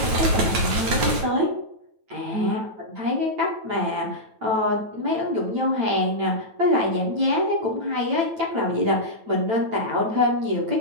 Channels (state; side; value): late; left; 9.4 ms